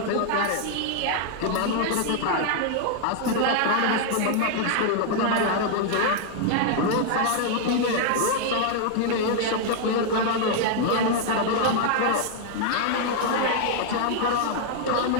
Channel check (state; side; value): different; both; correlation 0.00